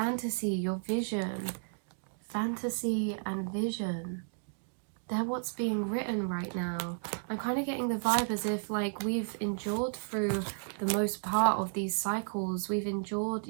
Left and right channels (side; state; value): left; silent; digital silence